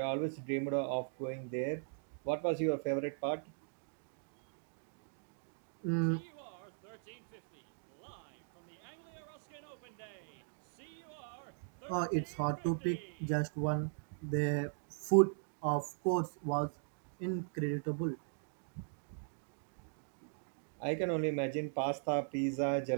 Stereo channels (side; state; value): left; silent; digital silence